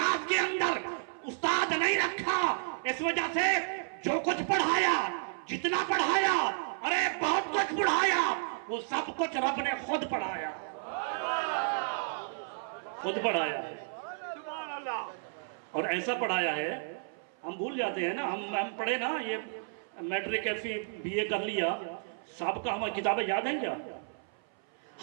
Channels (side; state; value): left; silent; 56 dB below the other